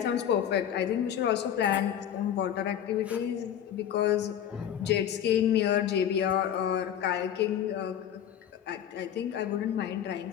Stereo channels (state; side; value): quieter; right; 9.9 dB